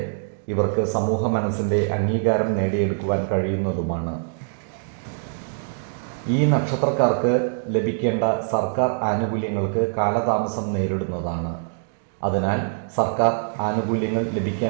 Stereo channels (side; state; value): left; silent; digital silence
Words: ഇവർക്ക് സമൂഹ മനസ്സിൻ്റെ അംഗീകാരം നേടിയെടുക്കുവാൻ കഴിയുന്നതുമാണ്. ഈ നക്ഷത്രക്കാർക്ക് ലഭിക്കേണ്ട സർക്കാർ ആനുകൂല്യങ്ങൾക്ക് കാലതാമസം നേരിടുന്നതാണ്. അതിനാൽ സർക്കാർ ആനുകൂല്യങ്ങൾ